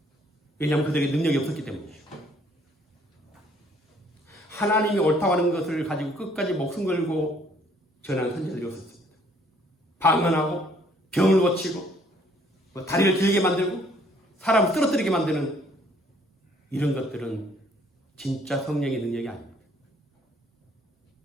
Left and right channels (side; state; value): both; normal; correlation 0.62